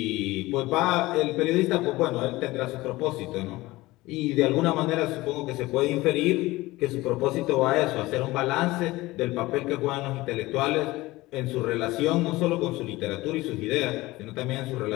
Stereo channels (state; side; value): quieter; right; 19.5 dB